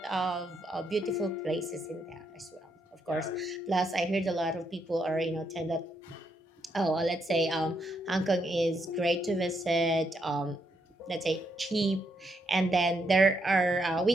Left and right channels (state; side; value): normal; both; correlation 0.78